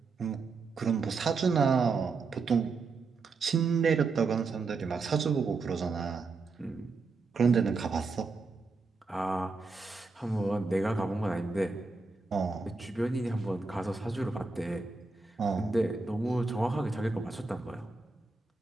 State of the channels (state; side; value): quieter; left; 4.1 dB